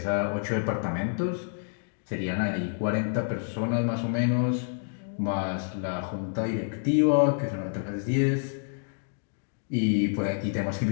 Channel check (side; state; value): right; silent; digital silence